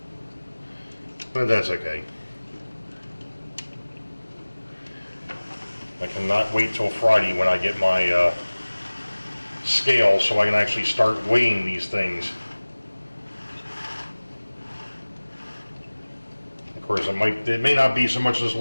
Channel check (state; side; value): inverted; both; correlation -1.00